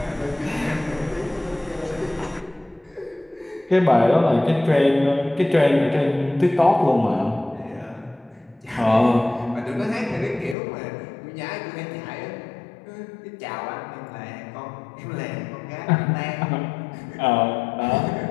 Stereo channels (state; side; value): drops out; right; at 10.6 s